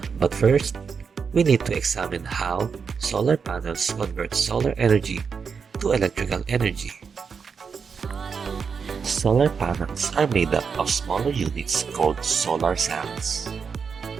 But first, we need to examine how solar panels convert solar energy to electrical energy. Solar panels are made up of smaller units called solar cells.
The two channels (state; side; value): quieter; left; 5.9 dB